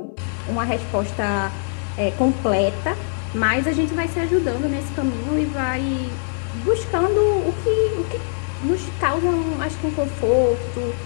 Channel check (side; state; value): right; silent; digital silence